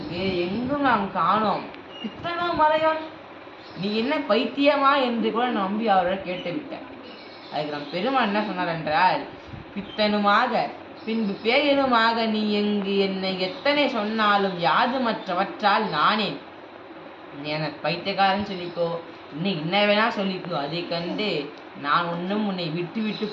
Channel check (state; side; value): identical; both; correlation 1.00